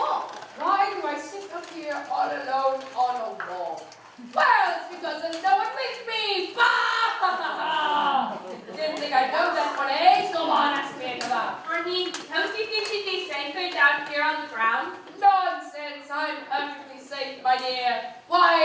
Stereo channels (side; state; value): both; identical; correlation 1.00